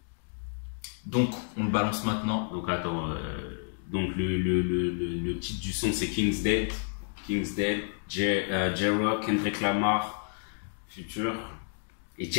Donc, on le balance maintenant. Donc attends, donc le titre du son c'est King's Dead, J-Rock, Kendrick Lamar, Future et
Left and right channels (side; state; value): right; silent; 58 dB below the other